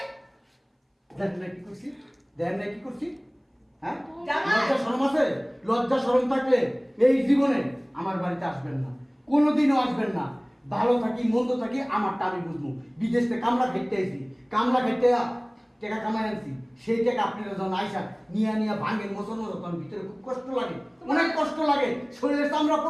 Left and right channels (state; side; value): identical; both; correlation 1.00